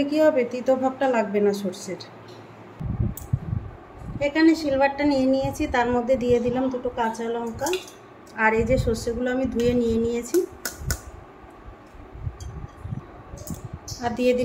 কি হবে, তিতো ভাবটা লাগবে না সর্ষের। এখানে সিলভারটা নিয়ে নিয়েছি, তার মধ্যে দিয়ে দিলাম দুটো কাঁচা লঙ্কা আর এই যে সর্ষেগুলো আমি ধুয়ে নিয়ে নিয়েছি, আর দিয়ে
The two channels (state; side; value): identical; both; correlation 1.00